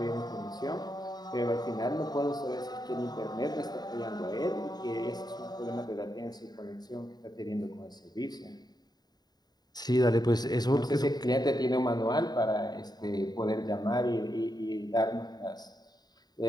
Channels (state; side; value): late; right; 0.20 ms